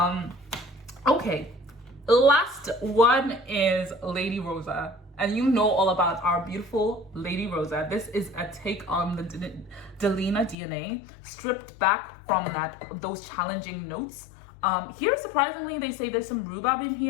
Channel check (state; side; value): drops out; right; at 10.6 s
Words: Okay, last one is Lady Rosa. And you know all about our beautiful Lady Rosa. This is a take on the Delina DNA, stripped back from those challenging notes. Here, surprisingly, they say there's some rhubarb in